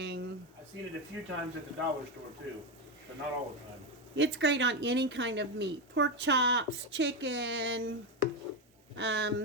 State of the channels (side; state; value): both; normal; correlation 0.10